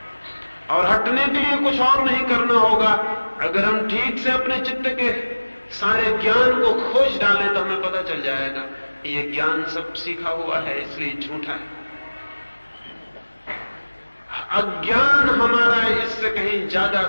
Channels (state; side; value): inverted; both; correlation -1.00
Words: और हटने के लिए कुछ और नहीं करना होगा। अगर हम ठीक से अपने चित्त के सारे ज्ञान को खोज डालें तो हमें पता चल जाएगा ये ज्ञान सब सीखा हुआ है, इसलिए झूठा है। अज्ञान हमारा इससे कहीं ज्यादा